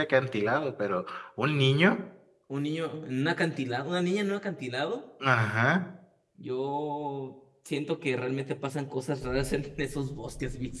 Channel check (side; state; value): both; identical; correlation 1.00